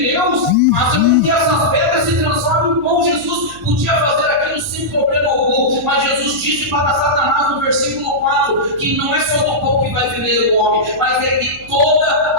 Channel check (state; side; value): noise; right; hum, 21 dB below the sound